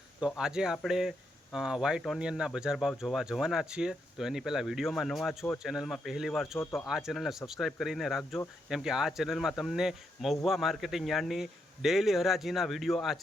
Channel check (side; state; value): both; normal; correlation 0.80